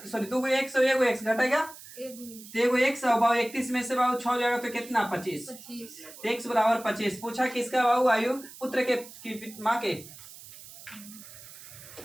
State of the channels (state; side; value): noise; right; hiss, 17 dB below the sound